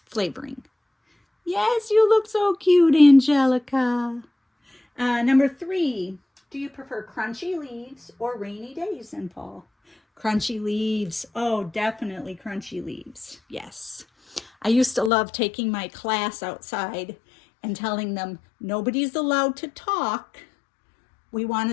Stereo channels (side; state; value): right; drops out; at 15.1 s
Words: flavoring. Yes, you look so cute, Angelica. Number 3, do you prefer crunchy leaves or rainy days in fall? Crunchy leaves. Oh, definitely crunchy leaves. Yes. I used to love taking my class outside and telling them nobody's allowed to talk. We want